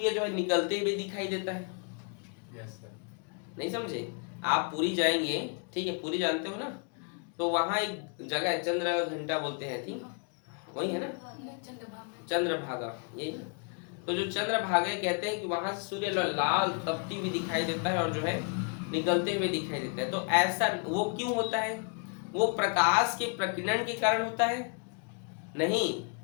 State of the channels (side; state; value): right; quieter; 38.7 dB